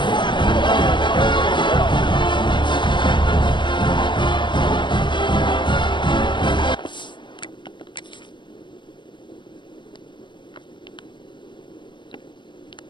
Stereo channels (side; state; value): right; late; 0.23 ms